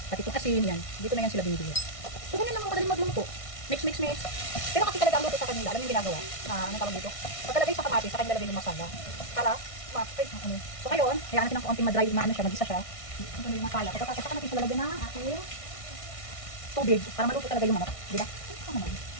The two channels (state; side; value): late; right; 1.6 ms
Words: Pati itong asin yan. Dito na yan sila binibili. So, ganyan lang ang kadaling magluto. Mix. Pero kasi talaga ang luto sa kanila, alam yung ginagawa? Anong tawag dito? Pagkalagay sa kamatis, sa kanila lagay yung masala. Para, So, ngayon, hayaan natin ng konting madry, mag-isa siya. Ito na yung masala. Pagkatapos, saka natin siya lalagyan ng ating tubig para maluto talaga yung manok. Diba?